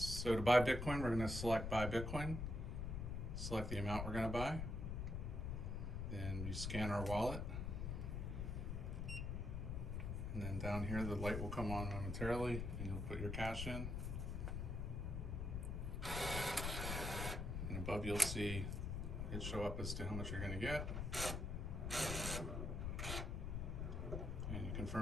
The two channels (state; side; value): noise; left; rumble, 2 dB below the sound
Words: So to buy Bitcoin, we're going to select buy Bitcoin, select the amount we're going to buy, then you scan our wallet, and then down here the light will come on momentarily and you'll put your cash in, and above you'll see it show up as to how much you're going to get, and you